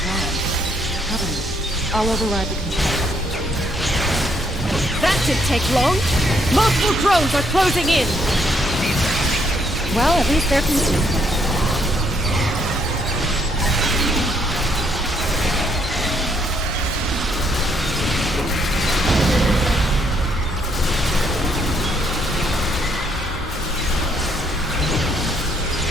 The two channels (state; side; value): normal; both; correlation 0.70